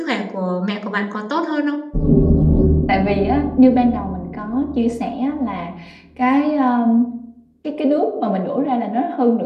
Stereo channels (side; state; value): both; identical; correlation 1.00